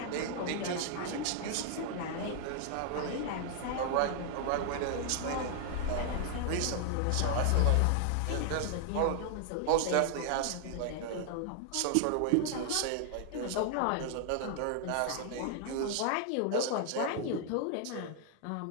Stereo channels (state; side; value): different; both; correlation 0.00